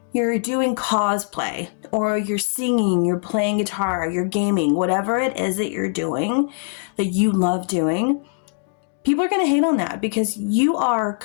You're doing cosplay, or you're singing, you're playing guitar, you're gaming, whatever it is that you're doing that you love doing. People are going to hate on that, because you are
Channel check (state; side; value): silent; right; 65 dB below the other